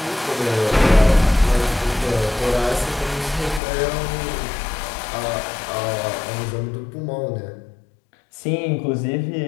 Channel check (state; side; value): drops out; right; at 3.6 s